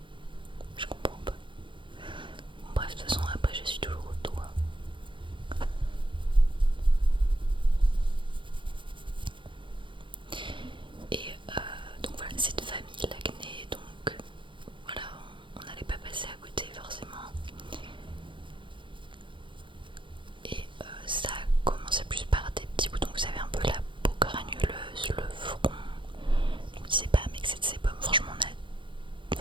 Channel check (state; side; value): late; left; 0.24 ms